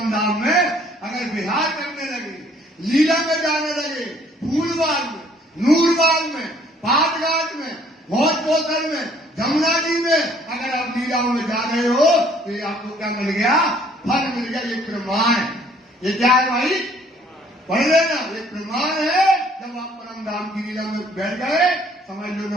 धाम में अगर विहार करने लगे, लीला में जाने लगे, फूलबाग में, नूरबाग में, पाटघाट में, भोज पोखर में, जमुना जी में अगर आप लीलाओं में जा रहे हो तो ये आपको क्या मिल गया? फल मिल गया। ये प्रमाण। ये क्या है भाई? पढ़ लेना। ये प्रमाण है। जब आप परम धाम की लीला में बैठ गए, समझ लो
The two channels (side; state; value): both; normal; correlation 0.60